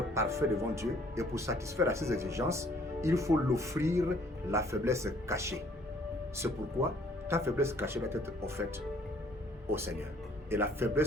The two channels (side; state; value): both; normal; correlation 0.60